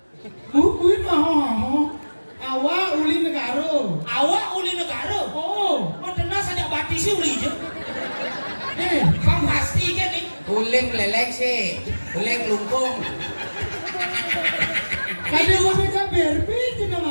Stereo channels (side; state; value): both; inverted; correlation -1.00